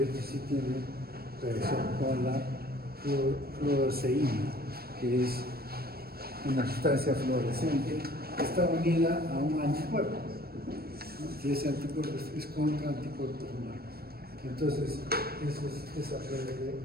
este sí tiene reacción con la fluoresceína, que es una sustancia fluorescente que está unida a un anticuerpo. Y ese anticuerpo es contra anticuerpos humanos. Entonces, eso es esa prueba de...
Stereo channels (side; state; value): left; late; 0.45 ms